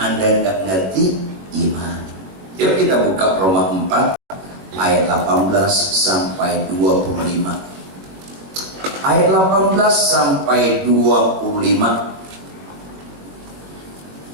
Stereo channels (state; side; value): late; left; 21 ms